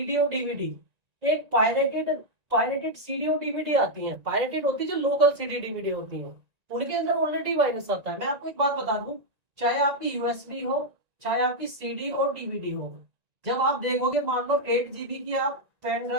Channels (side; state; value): left; late; 1.9 ms